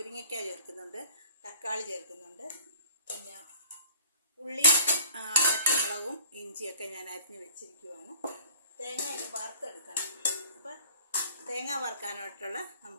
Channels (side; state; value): both; inverted; correlation -0.51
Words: ചേർക്കുന്നുണ്ട്, തക്കാളി ചേർക്കുന്നുണ്ട്, പിന്നെ ഉള്ളി, പച്ചമുളകും ഇഞ്ചിയൊക്കെ ഞാൻ അരിഞ്ഞ് വെച്ചിരിക്കുവാണ്. തേങ്ങ ഇനി വറുത്തെടുക്കണം. അപ്പോൾ തേങ്ങ വറുക്കാനായിട്ടുള്ള